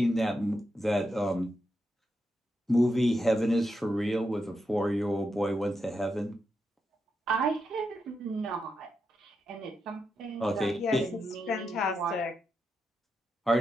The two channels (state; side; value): normal; both; correlation 0.85